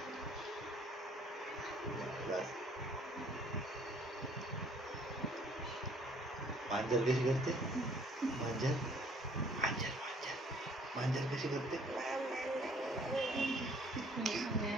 मांजर कशी करते? मांजर मांजर मांजर मांजर कशी करते?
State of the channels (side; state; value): both; normal; correlation 0.59